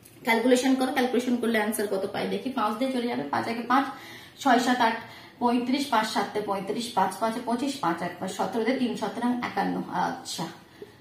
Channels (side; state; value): both; identical; correlation 1.00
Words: ক্যালকুলেশন করো। ক্যালকুলেশন করলে অ্যান্সার কত পাই দেখি। 5 দিয়ে চলে যাবে, 5 একে 5, 6 7 8 35, 5 7 35, 5 5 25, 5 1 17, 3 17 51। আচ্ছা,